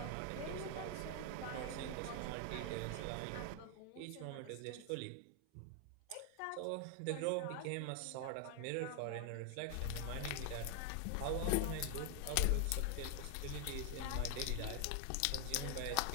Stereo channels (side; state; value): both; different; correlation 0.00